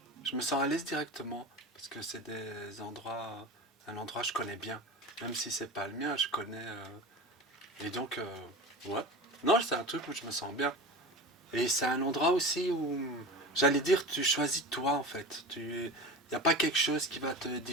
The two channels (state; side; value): normal; both; correlation 0.31